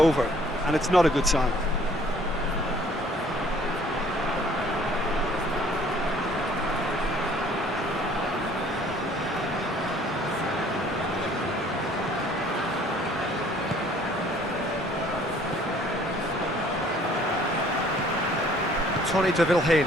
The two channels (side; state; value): both; normal; correlation 0.57